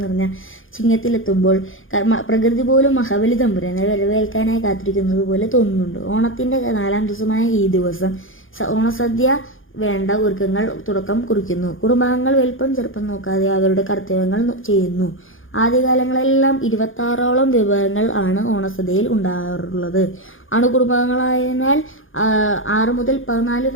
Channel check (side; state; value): right; late; 0.58 ms